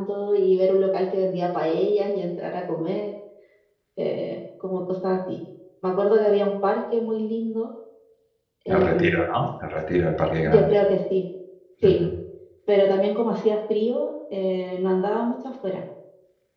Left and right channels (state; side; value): identical; both; correlation 1.00